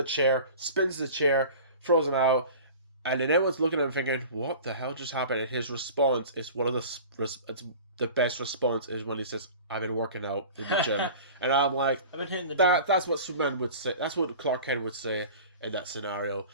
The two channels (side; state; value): both; inverted; correlation -0.39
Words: chair, spins the chair, throws him out, and then everyone's looking at him thinking, "What the hell just happened?" And his response is the best response is when he says, "I've been working out in the gym." And I'm like, I've been hitting the gym. That's what Superman would say. That's what Clark Kent would say in that scenario.